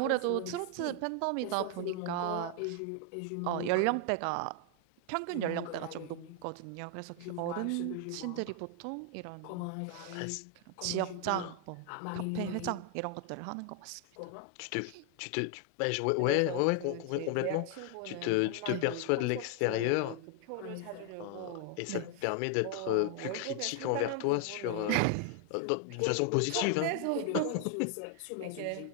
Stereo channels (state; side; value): different; both; correlation 0.00